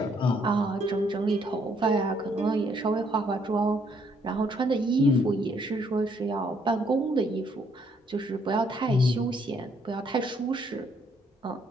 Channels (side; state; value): both; normal; correlation 0.68